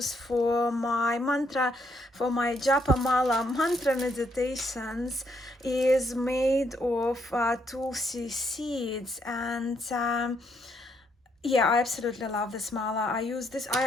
for my mantra, for my japa mala mantra meditations, is made of tulsi seeds, and Yeah, I absolutely love this mala. I use this.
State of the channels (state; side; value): normal; both; correlation 0.73